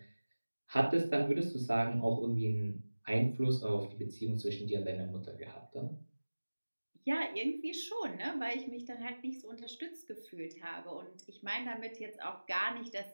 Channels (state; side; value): inverted; both; correlation -1.00